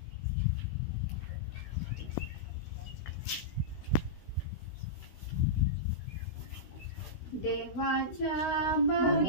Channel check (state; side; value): late; right; 16 ms